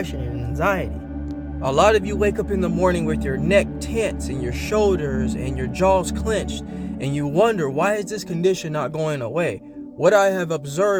and anxiety. A lot of you wake up in the morning with your neck tense and your shoulders and your jaws clenched, and you wonder, why is this condition not going away? What I have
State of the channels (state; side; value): identical; both; correlation 1.00